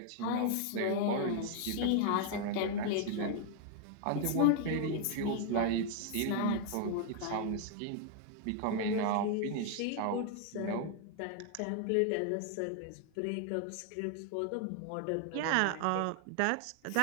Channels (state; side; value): different; both; correlation 0.00